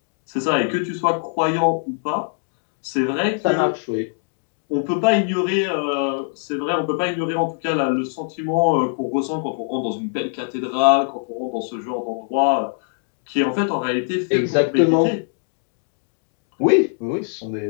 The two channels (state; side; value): silent; right; digital silence